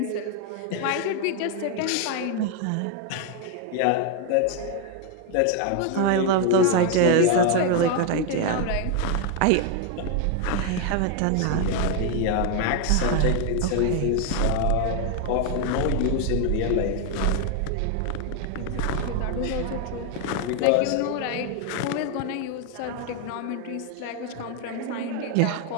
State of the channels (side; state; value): both; different; correlation 0.01